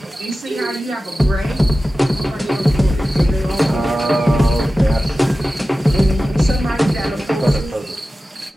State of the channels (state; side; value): normal; both; correlation 0.95